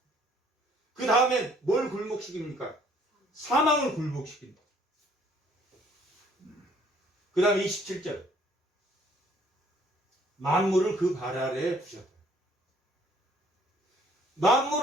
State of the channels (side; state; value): both; normal; correlation 0.61